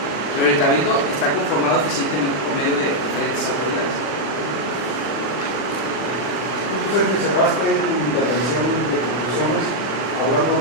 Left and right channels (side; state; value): right; late; 39 ms